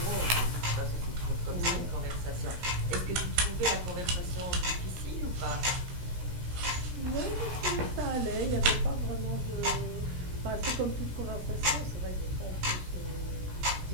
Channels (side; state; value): left; late; 16 ms